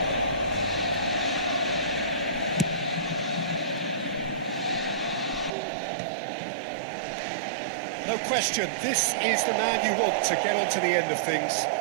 No question, this is the man you want to get on to the end of things.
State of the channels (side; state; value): left; drops out; at 5.5 s